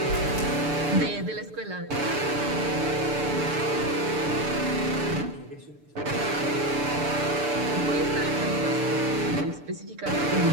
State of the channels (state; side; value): late; left; 6.8 ms